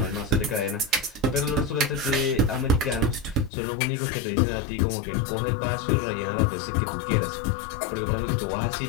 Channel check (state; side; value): drops out; right; at 3.5 s